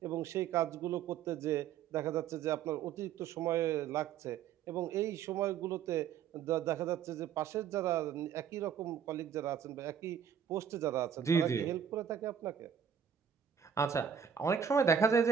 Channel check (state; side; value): quieter; left; 8.1 dB